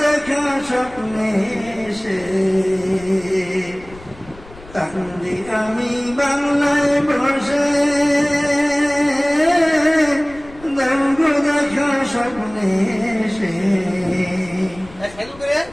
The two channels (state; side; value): noise; left; rumble, 21 dB below the sound